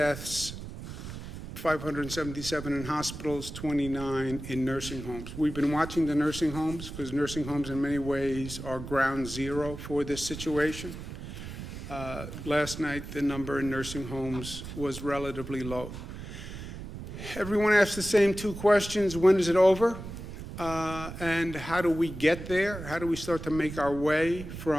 577 in hospitals, 29 in nursing homes. We've been watching the nursing homes because nursing homes in many ways are ground zero for this situation. Last night, the number in nursing homes was relatively low. Everyone asks the same two questions: when is it over? And how do we get there? How do we start to make our way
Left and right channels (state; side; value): noise; right; rumble, 10 dB below the sound